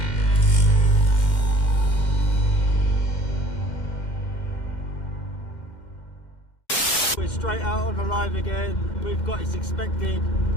We're straight out on the live again. We've got a suspected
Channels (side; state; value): right; late; 2.1 ms